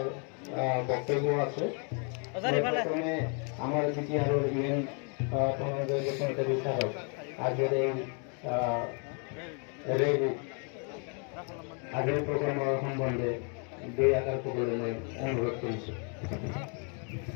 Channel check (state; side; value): quieter; right; 38.7 dB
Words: বক্তব্য আছে। প্রথমে আমার বিটিআরের ইভেন্ট প্রণোদয় বিচারক আগের এই আগের প্রোগ্রাম সম্বন্ধে দুই আকার করে অনুরোধ করেছি।